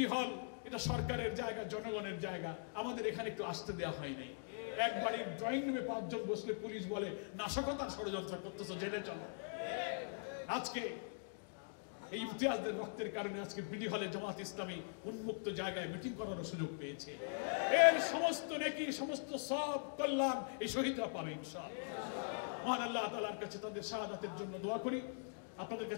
হল এটা সরকারের জায়গা, জনগণের জায়গা, আমাদের এখানে একটু আসতে দেওয়া হয়নি। এক বাড়ির ড্রয়িং রুমে 5 জন বসলে পুলিশ বলে নাশকতার ষড়যন্ত্র করতেছ, জেনে চলো। আজকে এই ইমতিয়াজদের রক্তের কারণে আজকে বিডি হলে জামাত ইসলামী উন্মুক্ত জায়গায় মিটিং করার সুযোগ পেয়েছে। এর সমস্ত নেকি, সমস্ত সব কল্যাণ এই শহীদরা পাবে ইনশাআল্লাহ। মহান আল্লাহ তাআলার কাছে তাদের শাহাদাতের জন্য দোয়া করি। আপনাদের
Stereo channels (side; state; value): right; silent; digital silence